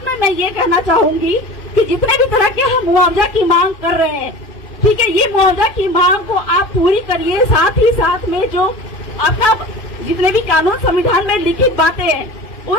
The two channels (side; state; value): right; late; 2.6 ms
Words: में मैं ये कहना चाहूंगी कि जितने भी तरह के हम मुआवजा की मांग कर रहे हैं, ठीक है, ये मुआवजा की मांग को आप पूरी करिए। साथ ही साथ में जो आपका जितने भी कानून संविधान में लिखित बातें हैं